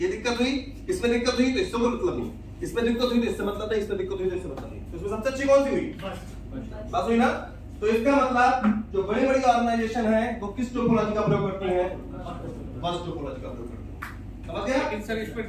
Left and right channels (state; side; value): identical; both; correlation 1.00